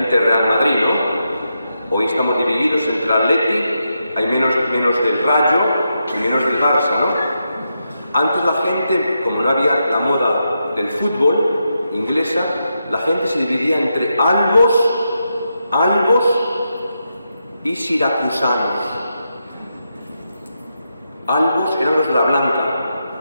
del Real Madrid, ¿no? Hoy estamos divididos entre el Atleti, hay menos del Rayo y menos del Barça, ¿no? Antes la gente, como no había la moda del fútbol inglesa, la gente se dividía entre albos y siracusanos. Albos eran los de la blanca.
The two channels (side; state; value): both; inverted; correlation -0.85